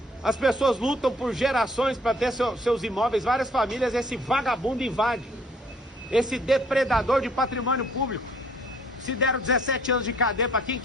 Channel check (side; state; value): both; normal; correlation 0.60